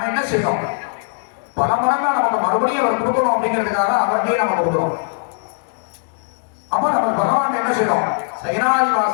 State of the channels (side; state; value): right; silent; digital silence